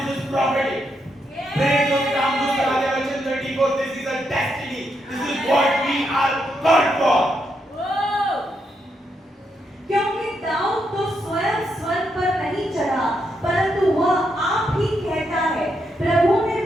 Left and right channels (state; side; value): normal; both; correlation 0.80